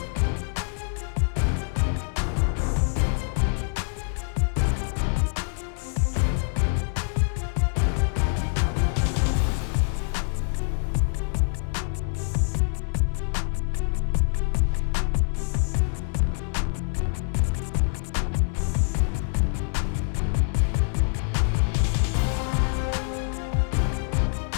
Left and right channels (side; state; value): right; silent; 61 dB below the other